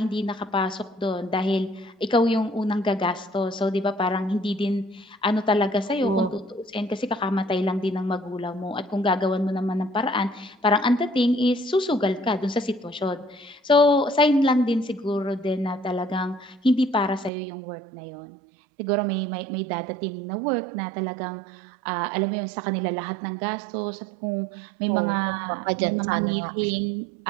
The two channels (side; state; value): left; drops out; at 17.3 s